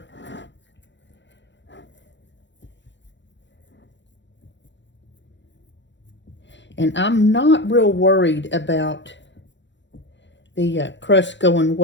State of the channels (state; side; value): late; right; 0.53 ms